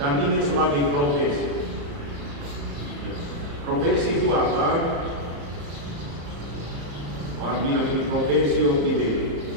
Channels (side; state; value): left; late; 35 ms